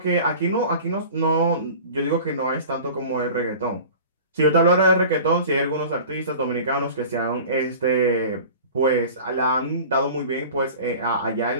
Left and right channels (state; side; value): inverted; both; correlation -0.40